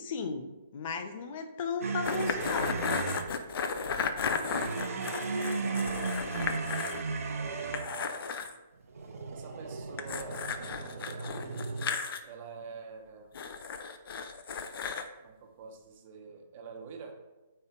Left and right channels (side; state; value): both; inverted; correlation -0.45